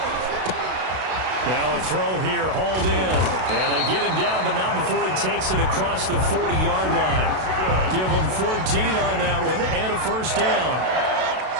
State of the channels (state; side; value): late; left; 32 ms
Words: Now a throw here, hauled in. And they get him down, but not before he takes it across the 40-yard line. Give him 14 on that one, and a first down.